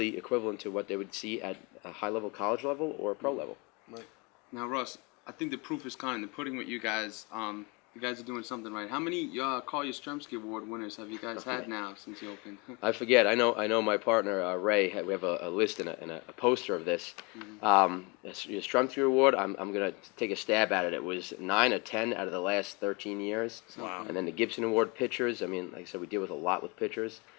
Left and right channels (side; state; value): right; quieter; 29.0 dB